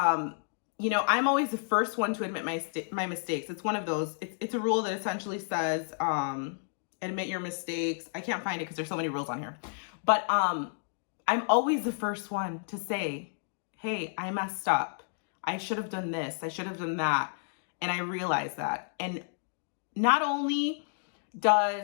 you know, I'm always the first one to admit my mistakes. It's one of those. It's a rule that essentially says, admit your mistakes. I can't find it because there's so many rules on here. But I'm always the first one to say, hey, I messed up. I should have done this. I should have done that. And I realize that. And not only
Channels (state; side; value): silent; right; digital silence